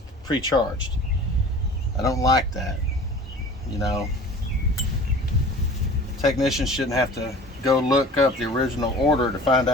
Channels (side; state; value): both; normal; correlation 0.43